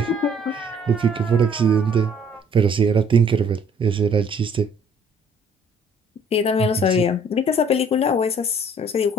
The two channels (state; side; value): normal; both; correlation 0.59